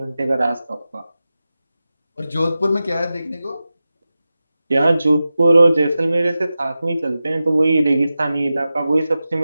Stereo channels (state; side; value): inverted; both; correlation -0.94